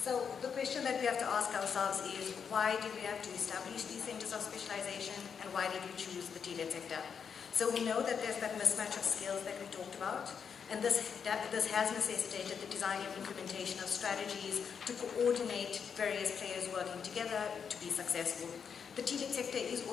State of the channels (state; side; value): quieter; right; 6.8 dB